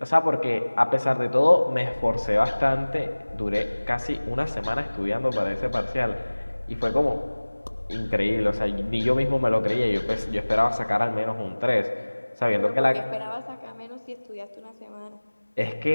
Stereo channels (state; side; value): inverted; both; correlation -1.00